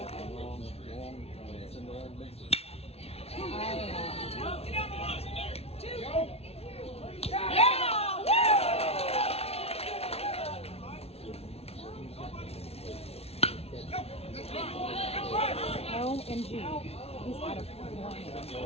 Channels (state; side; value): late; right; 0.30 ms